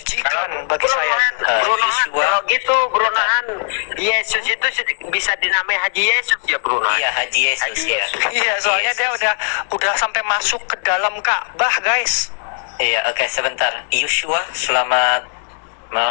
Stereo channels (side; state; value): right; silent; 66 dB below the other